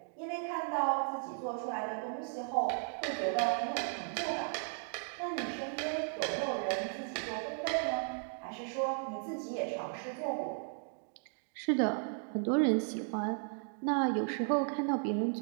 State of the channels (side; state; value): left; silent; 54 dB below the other